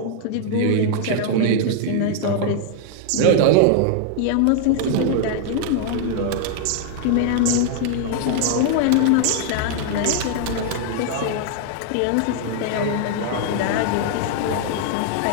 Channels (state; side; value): different; both; correlation 0.00